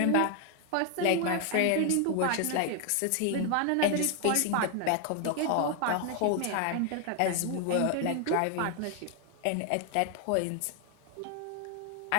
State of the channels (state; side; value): different; both; correlation 0.00